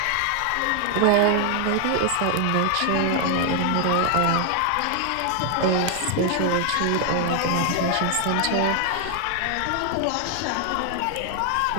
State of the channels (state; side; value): different; both; correlation 0.00